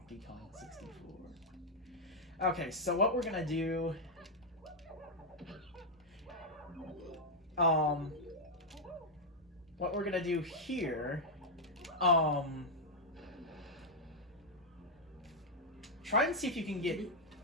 Kong 64?" Okay, so what we're gonna do... what we're gonna do here, try and see if you can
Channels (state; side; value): normal; both; correlation -0.01